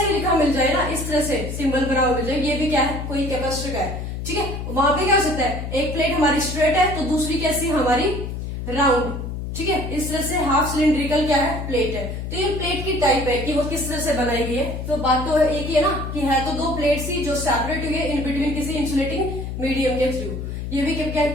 लिखा मिल जाए ना, इस तरह से सिंबल बना हुआ मिल जाए, ये भी क्या है, कोई कैपेसिटर का है। ठीक है, वहां पे क्या हो सकता है, एक प्लेट हमारी स्ट्रेट है तो दूसरी कैसी हमारी राउंड। ठीक है, इस तरह से हाफ सिलिंड्रिकल क्या है, प्लेट है। तो ये प्लेट की टाइप है कि वो किस तरह से बनाई गई है। तो बात तो एक ही है ना कि है तो दो प्लेट्स ही जो सेपरेट हुई है इन बिटवीन किसी इंसुलेटिंग मीडियम के थ्रू। ये भी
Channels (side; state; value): left; noise; hum, 5 dB below the sound